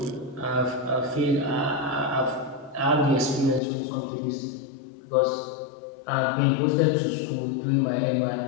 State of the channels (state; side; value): drops out; right; at 3.6 s